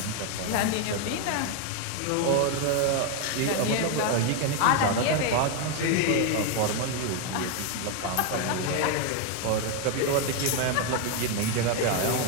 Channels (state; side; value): different; both; correlation 0.01